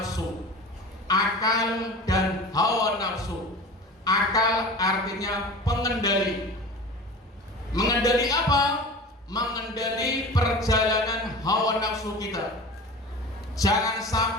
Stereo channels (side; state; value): both; normal; correlation 0.36